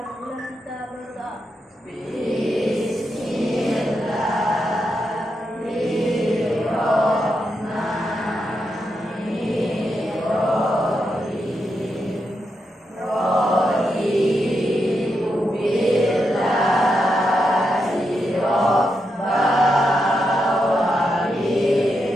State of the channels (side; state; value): both; normal; correlation 0.84